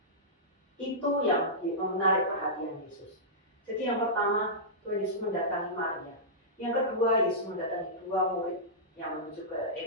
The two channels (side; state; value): both; normal; correlation -0.15